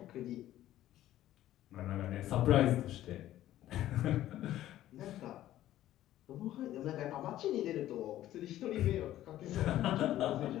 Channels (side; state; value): right; quieter; 13.5 dB